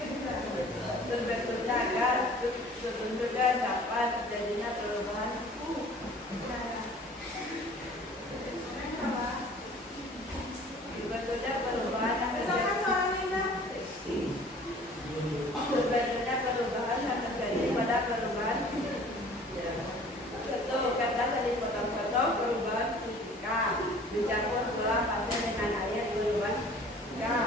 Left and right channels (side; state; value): both; normal; correlation 0.49